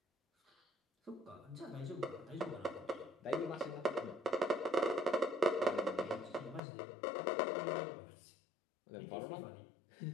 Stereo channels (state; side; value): drops out; right; at 6.6 s